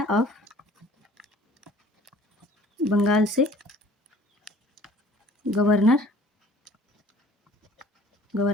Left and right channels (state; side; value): normal; both; correlation 0.52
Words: ऑफ बंगाल से गवर्नर